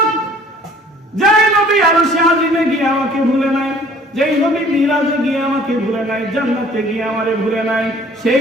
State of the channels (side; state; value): both; normal; correlation 0.53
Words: যেই নবী আরশে আজিমে গিয়ে আমাকে ভুলে নাই, যেই নবী মিরাজে গিয়ে আমাকে ভুলে নাই, জান্নাতে গিয়ে আমারে ভুলে নাই,